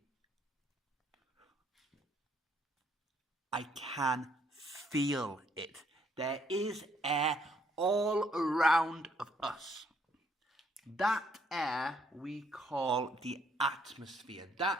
I can feel it. There is air all around of us. That air we call the atmosphere.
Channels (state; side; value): normal; both; correlation 0.68